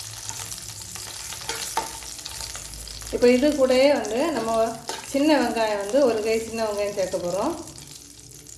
இப்போ இது கூடயே நம்ம சின்ன வெங்காயம் ஒரு கை சின்ன வெங்காயம் சேர்க்க போகிறோம்.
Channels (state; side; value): identical; both; correlation 1.00